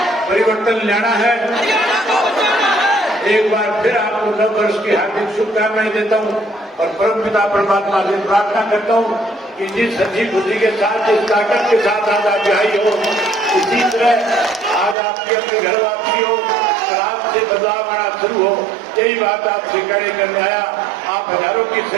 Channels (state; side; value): drops out; left; at 15.0 s